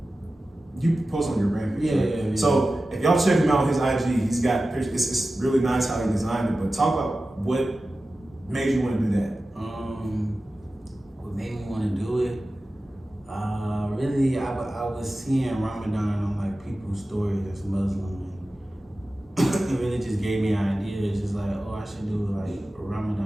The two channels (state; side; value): normal; both; correlation 0.95